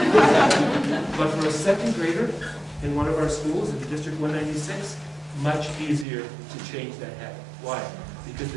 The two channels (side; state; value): left; drops out; at 6.1 s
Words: But for a second grader in one of our schools in District 196, much easier to change that habit. Why? Because